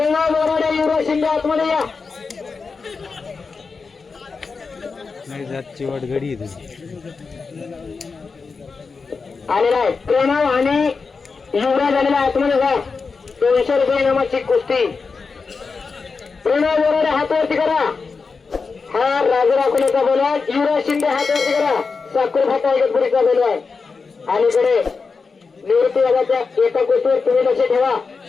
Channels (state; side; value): quieter; right; 4.7 dB